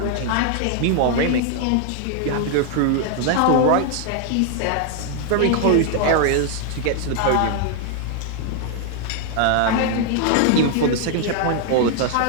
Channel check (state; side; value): different; both; correlation 0.00